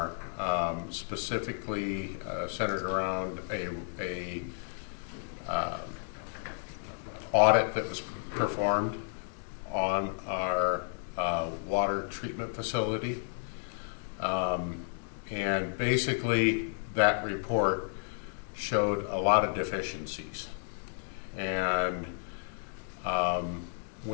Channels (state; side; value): silent; right; digital silence